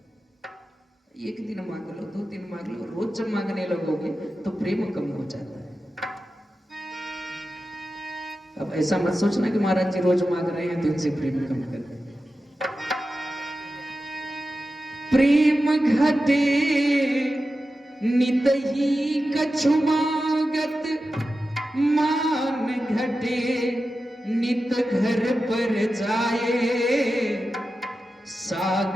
है। एक दिन मांग लो, 2 दिन मांग लो, रोज जब मांगने लगोगे तो प्रेम कम हो जाता है। अब ऐसा मत सोचना कि महाराज जी रोज मांग रहे हैं तो इनसे प्रेम कम कर रहे हैं। प्रेम घटे नित ही कछु मागत, मान घटे नित घर पर जाए।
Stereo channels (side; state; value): both; normal; correlation 0.92